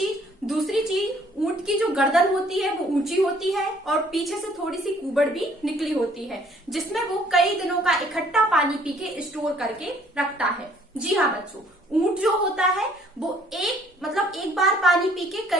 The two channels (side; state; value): both; normal; correlation 0.60